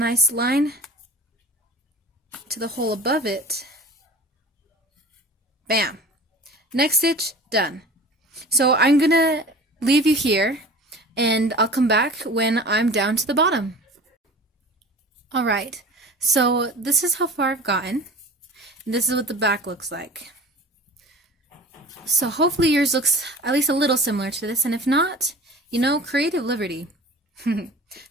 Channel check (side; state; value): both; normal; correlation 0.39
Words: line to the hole above it. Bam! Next stitch, done. So I'm going to leave you here, and I'll come back when I'm down to the bottom. Alright, so this is how far I've gotten. This is what the back looks like. So hopefully yours looks at least a little similar to this, and if not, you know, creative liberty.